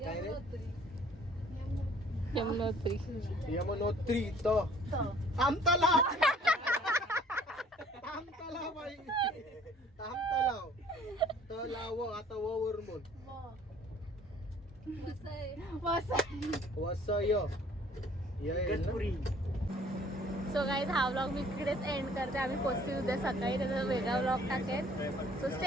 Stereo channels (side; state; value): both; normal; correlation 0.56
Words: काय रे यमुनोत्री. यमुनोत्री तो आमतलाव. आमतलाव बाई आमतलाव तलाव. आता व वरून बोल. वसय गणपुरी. सो गाईज हा व्लॉग मी इकडेच एंड करते. आम्ही पोचतील उद्या सकाळी. त्याचा वेगळा व्लॉग टाकेल. सो